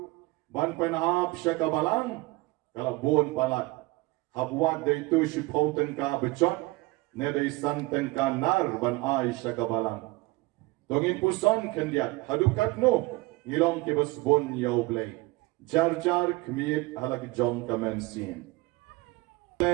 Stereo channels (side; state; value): left; quieter; 21.9 dB